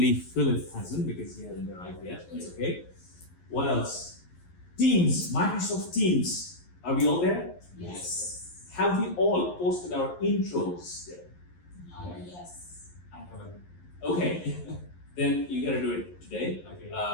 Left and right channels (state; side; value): late; right; 11 ms